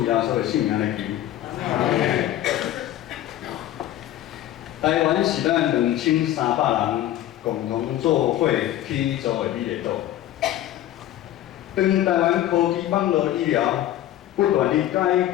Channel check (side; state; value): right; quieter; 13.0 dB